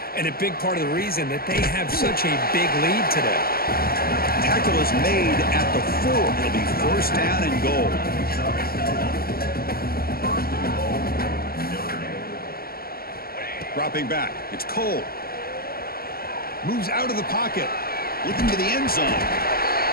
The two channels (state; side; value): late; right; 0.44 ms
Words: and a big part of the reason that they have such a big lead today. Tackle is made at the 4. It'll be first down and goal. Dropping back. It's Cole. Moves out of the pocket. Looking to the end zone.